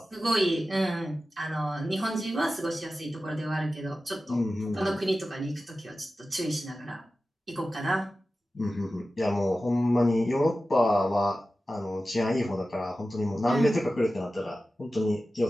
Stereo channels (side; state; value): both; normal; correlation 0.94